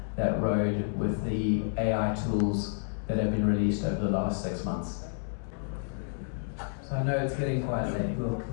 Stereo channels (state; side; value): silent; right; 58 dB below the other